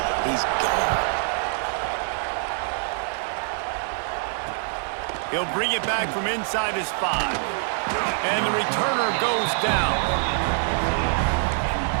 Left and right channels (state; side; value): silent; left; digital silence